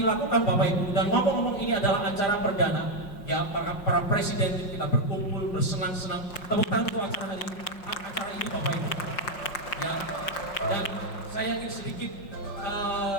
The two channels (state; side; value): late; right; 5.5 ms